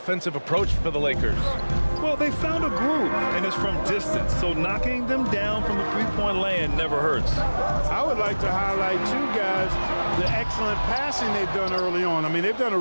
approach for the Lakers? Well, they found a groove, and it's from distance, so knocking them down from the three-point land never hurts. I would like to highlight, too, guys, the excellent passing they've done early on. I mean, they've done a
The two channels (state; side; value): inverted; both; correlation -1.00